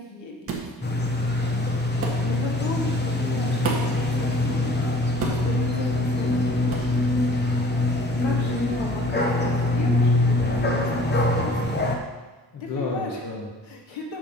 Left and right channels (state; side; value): normal; both; correlation 0.51